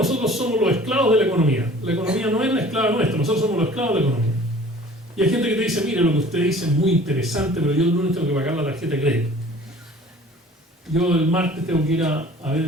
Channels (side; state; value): both; normal; correlation 0.48